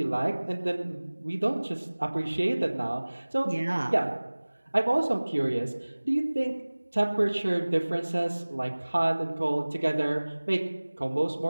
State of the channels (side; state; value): both; inverted; correlation -1.00